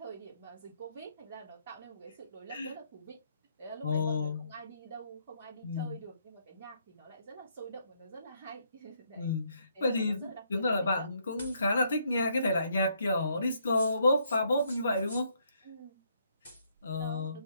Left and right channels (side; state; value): both; inverted; correlation -0.72